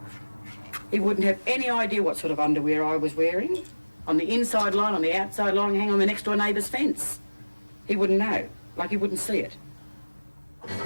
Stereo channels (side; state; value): both; inverted; correlation -1.00